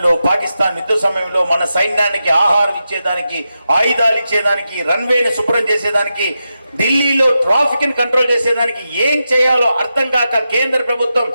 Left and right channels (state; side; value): inverted; both; correlation -0.89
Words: పాకిస్తాన్ యుద్ధ సమయంలో మన సైన్యానికి ఆహారం ఇచ్చేదానికి, ఆయుధాలు ఇచ్చేదానికి, రన్వేని శుభ్రం చేసేదానికి, ఢిల్లీలో ట్రాఫిక్ ని కంట్రోల్ చేసేదానికి ఏం చేయాలో అర్థం కాక కేంద్ర ప్రభుత్వం